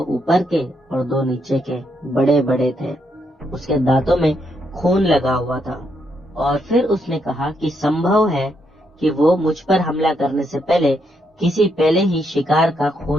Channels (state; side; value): normal; both; correlation 0.77